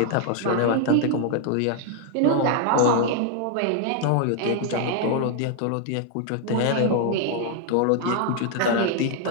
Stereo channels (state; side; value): different; both; correlation 0.00